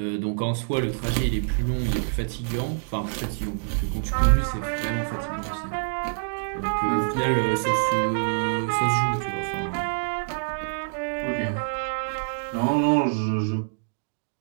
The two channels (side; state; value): left; silent; digital silence